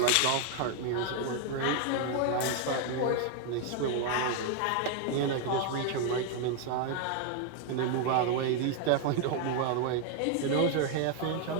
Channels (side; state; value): both; different; correlation 0.00